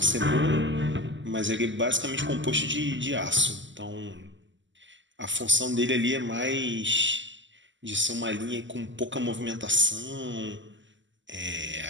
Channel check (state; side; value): late; left; 0.54 ms